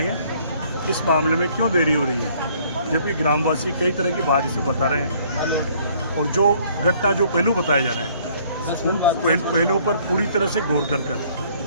इस मामले में क्यों देरी हो रही है, जबकि ग्रामवासी कई तरह की बात इसे बता रहे हैं और जो घटना जो पहलू बताए जा रहे हैं उन पहलुओं पर पूरी तरह से गौर कर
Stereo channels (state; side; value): inverted; both; correlation -0.61